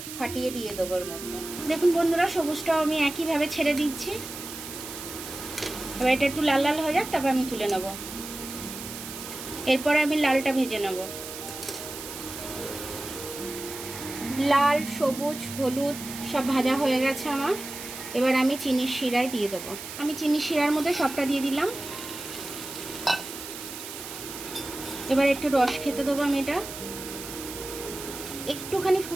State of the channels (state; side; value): noise; right; hiss, 10 dB below the sound